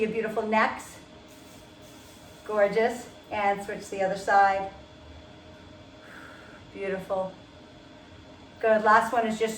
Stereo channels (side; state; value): both; identical; correlation 1.00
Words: beautiful necks. Gorgeous. And switch to the other side. Beautiful. Good. Last one is just